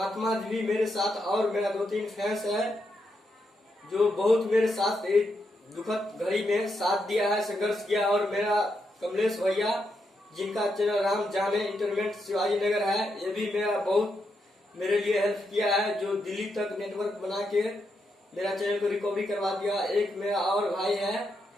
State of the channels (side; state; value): both; normal; correlation 0.82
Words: जी भी मेरे साथ, और मेरा 2-3 फैंस है जो बहुत मेरे साथ एक दुखद घड़ी में साथ दिया है, संघर्ष किया। और मेरा कमलेश भैया जिनका चैनल राम जाने इंटरनेट शिवाजी नगर है, ये भी मेरा बहुत मेरे लिए हेल्प किया है, जो दिल्ली तक नेटवर्क बना के मेरा चैनल को रिकवरी करवा दिया। एक मेरा और भाई है